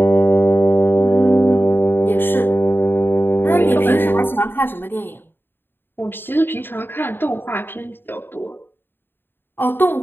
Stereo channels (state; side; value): late; right; 0.099 ms